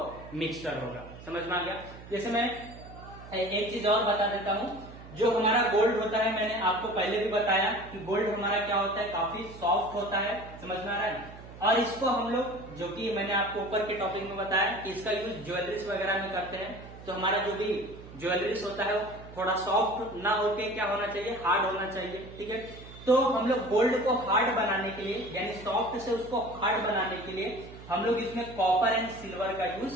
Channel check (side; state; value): right; noise; hum, 16 dB below the sound